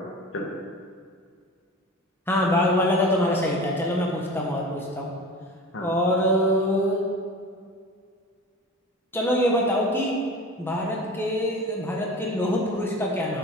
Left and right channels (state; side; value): normal; both; correlation 0.36